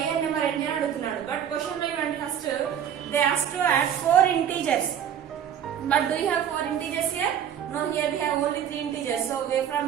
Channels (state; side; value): quieter; left; 9.2 dB